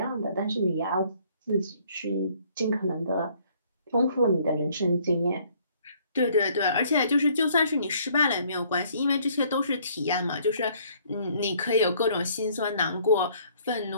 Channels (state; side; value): inverted; both; correlation -0.62